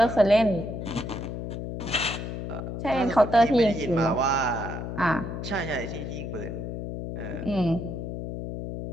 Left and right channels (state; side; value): noise; left; hum, 6 dB below the sound